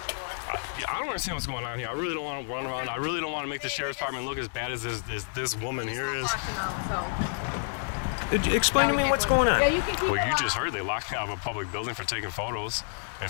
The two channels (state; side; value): silent; right; 59 dB below the other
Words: I don't understand what's going on here. I really don't want to run around. I really don't want to make the sheriff's department look as bad as this woman here is. Explain to me what's going on. Well, you just heard they locked me out of a public building for taking photos and